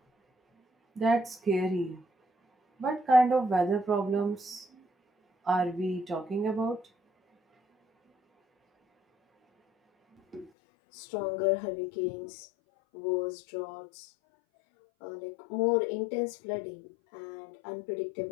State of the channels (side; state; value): right; drops out; at 10.5 s